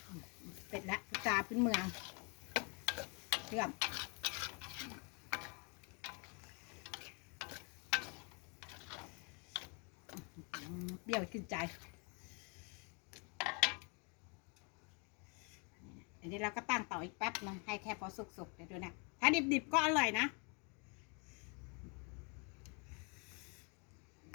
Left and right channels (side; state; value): right; quieter; 35.1 dB